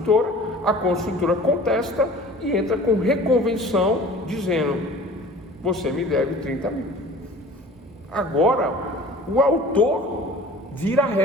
a construtora contesta e entra com reconvenção, dizendo, você me deve 30 mil. Agora, o autor vira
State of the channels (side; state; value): both; normal; correlation 0.44